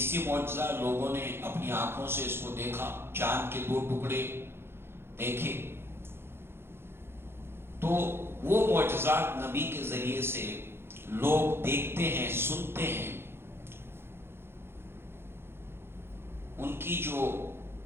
معجزہ، لوگوں نے اپنی آنکھوں سے اس کو دیکھا، چاند کے 2 ٹکڑے دیکھے۔ تو وہ معجزات نبی کے ذریعے سے لوگ دیکھتے ہیں، سنتے ہیں، ان کی جو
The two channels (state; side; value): late; left; 0.11 ms